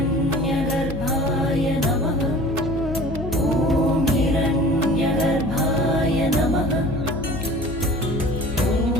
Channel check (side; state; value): left; noise; hum, 10 dB below the sound